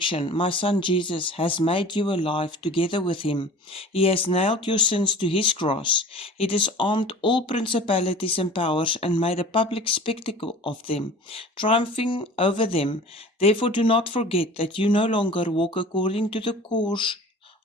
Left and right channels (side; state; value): both; normal; correlation 0.42